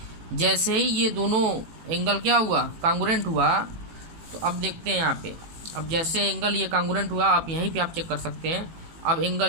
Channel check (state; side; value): late; left; 18 ms